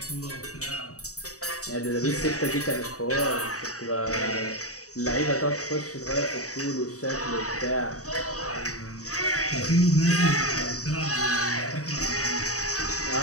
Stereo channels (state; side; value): late; right; 0.66 ms